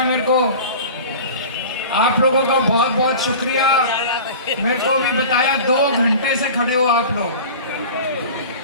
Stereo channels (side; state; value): both; inverted; correlation -0.37